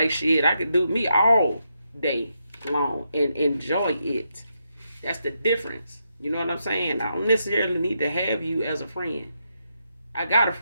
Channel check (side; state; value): both; inverted; correlation -0.82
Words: shit, I could do me all day long and enjoy it. That's the difference. You know what I'm saying? I don't necessarily need to have you as a friend. I got a